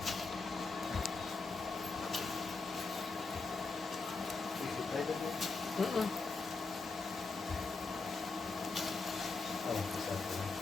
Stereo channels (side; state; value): right; quieter; 4.0 dB